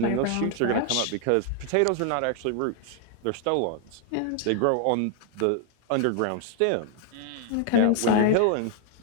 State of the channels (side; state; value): both; different; correlation 0.00